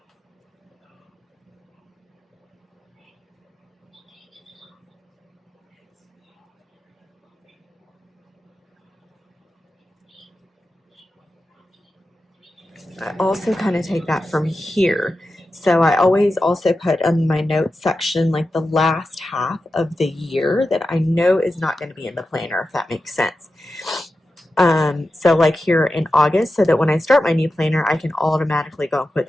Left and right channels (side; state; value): both; normal; correlation 0.91